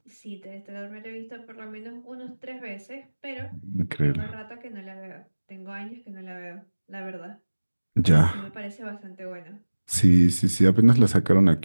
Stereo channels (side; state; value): both; inverted; correlation -1.00